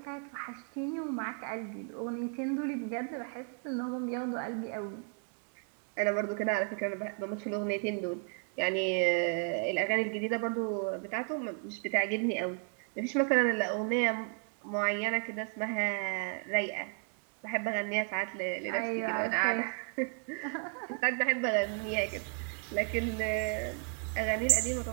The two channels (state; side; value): quieter; left; 38.2 dB